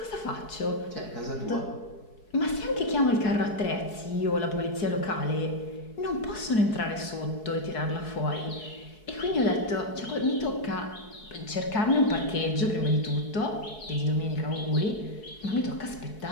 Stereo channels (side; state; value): right; late; 4.7 ms